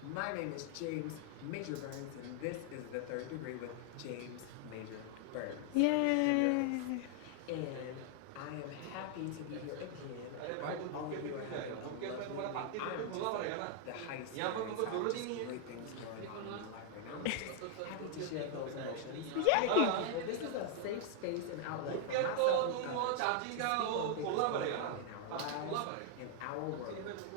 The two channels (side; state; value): both; different; correlation 0.00